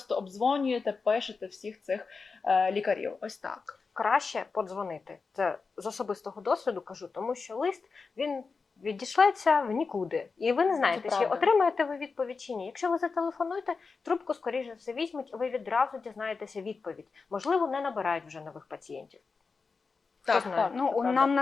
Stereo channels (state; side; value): quieter; right; 4.7 dB